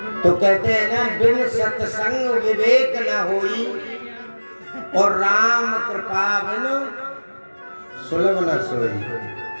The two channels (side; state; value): both; inverted; correlation -1.00